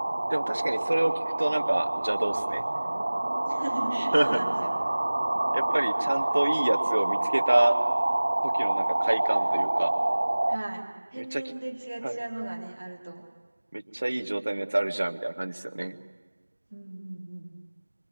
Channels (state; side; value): inverted; both; correlation -1.00